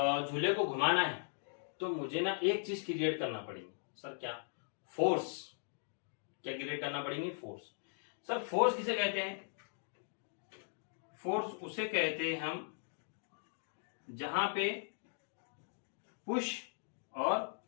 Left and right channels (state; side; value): silent; right; digital silence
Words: को घुमाना है तो मुझे ना एक चीज क्रिएट करना पड़ेगी। सर क्या? फोर्स। क्या क्रिएट करना पड़ेगी? फोर्स। सर फोर्स किसे कहते हैं? फोर्स उसे कहते हैं हम जहां पे पुश और